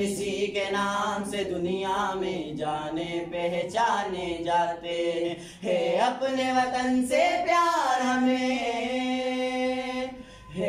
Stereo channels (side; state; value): both; identical; correlation 1.00